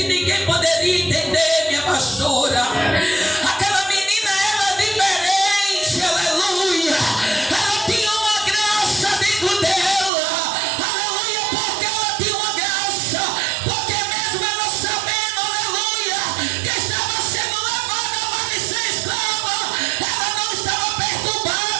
ninguém poderia entender, minha pastora. Aquela menina era diferente, aleluia. Ela tinha uma graça dentro dela, aleluia, porque ela tinha uma graça. Porque mesmo ela sabendo, aleluia, que estava sendo levada para ser escrava, ela não estava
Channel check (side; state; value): left; drops out; at 10.1 s